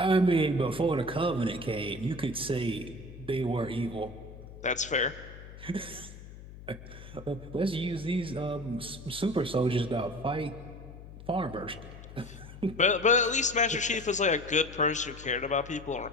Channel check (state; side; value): noise; left; hum, 15 dB below the sound